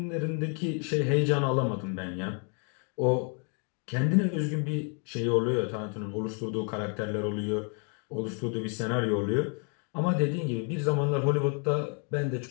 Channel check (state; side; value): quieter; right; 39.8 dB